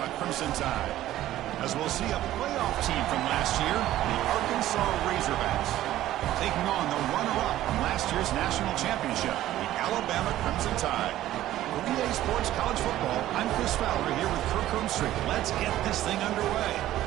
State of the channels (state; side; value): quieter; left; 14.0 dB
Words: Crimson Tide. As we'll see a playoff team from last year, the Arkansas Razorbacks, taking on the runner-up from last year's national championship, the Alabama Crimson Tide. For EA Sports College Football, I'm Chris Fowler here with Kirk Hermstrick. Let's get this thing underway.